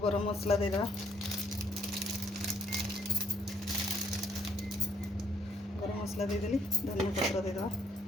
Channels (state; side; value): normal; both; correlation 0.68